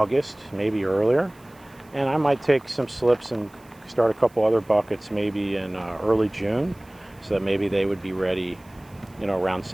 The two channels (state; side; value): noise; right; hiss, 29 dB below the sound